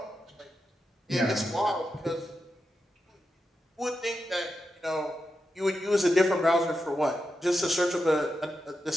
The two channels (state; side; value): normal; both; correlation 0.88